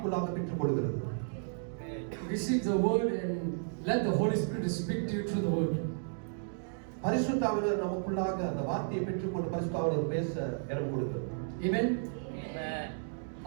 பெற்றுக்கொள்கிறது. Receive the word and let the Holy Spirit speak to you through the word. பரிசுத்த ஆவியானவர் நமக்குள்ளாக அந்த வார்த்தையை பெற்றுக்கொண்டு பரிசுத்த ஆவியானவர் பேச இடம் கொடுக்கிறது. Amen. Amen.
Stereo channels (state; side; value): silent; left; digital silence